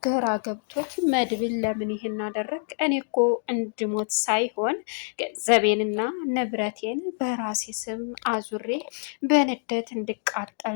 ግራ ገብቶት መድብል ለምን ይሄን አደረግ? እኔ እኮ እንድሞት ሳይሆን ገንዘቤንና ንብረቴን በራሴ ስም አዙሬ በንደት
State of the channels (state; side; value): silent; right; 61 dB below the other